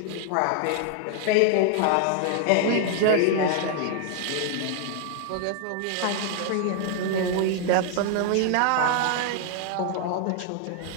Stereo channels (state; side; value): different; both; correlation 0.00